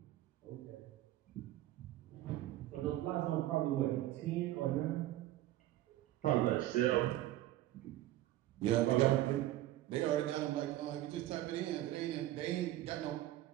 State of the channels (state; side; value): quieter; left; 14.9 dB